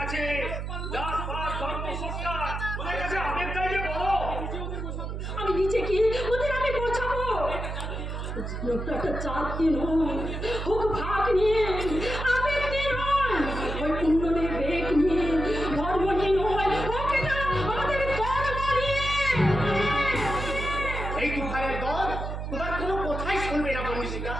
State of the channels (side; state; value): right; noise; hum, 5 dB below the sound